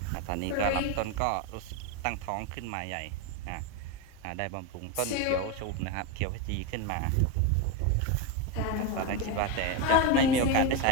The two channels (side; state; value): both; different; correlation 0.04